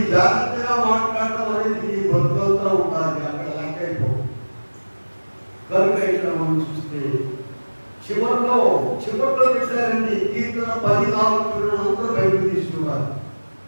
జాగ్రత్తగా మాట్లాడటం అనేది ఈ బతుకంతా ఉండాలి, అక్కడ లెక్క అయిపోవు. కనుక ఇక్కడ మనం చూస్తే చివరిలో పెట్టారండి కీర్తన 14 అందరూ బయటకు తీసుకున్నారు.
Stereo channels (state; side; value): inverted; both; correlation -1.00